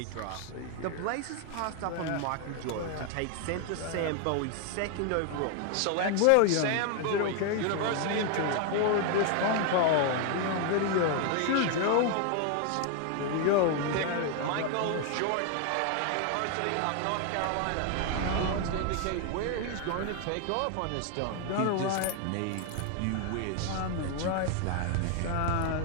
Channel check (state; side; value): different; both; correlation 0.00